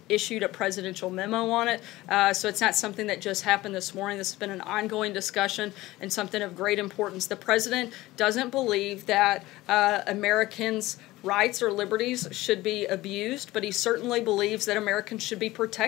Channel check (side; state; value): right; quieter; 18.1 dB